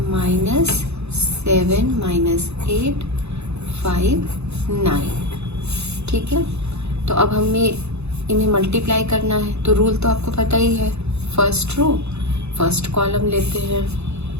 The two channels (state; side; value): late; left; 0.81 ms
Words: -7 - 8 5 9। ठीक है, तो अब हमें इन्हें मल्टीप्लाई करना है। तो रूल तो आपको पता ही है, फर्स्ट रो फर्स्ट कॉलम लेते हैं,